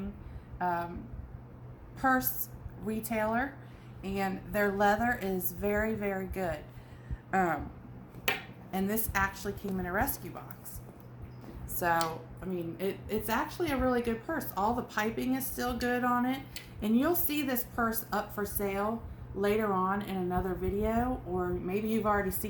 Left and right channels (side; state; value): both; identical; correlation 1.00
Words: purse retailer, and their leather is very, very good. And this actually came in a rescue box. So, I mean, it's actually a really good purse. All the piping is still good on it. And you'll see this purse up for sale later on in another video, or maybe you've already